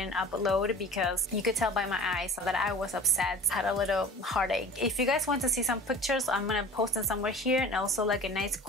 upload, because you could tell by my eyes that I was upset, had a little heartache. If you guys want to see some pictures, I'm gonna post them somewhere here, and also like a nice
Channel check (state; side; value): normal; both; correlation 0.41